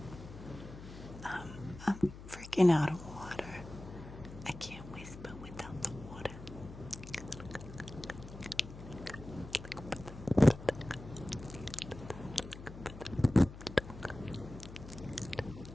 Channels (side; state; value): left; noise; hum, 14 dB below the sound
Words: I'm freaking out of water. I can't whisper without the water.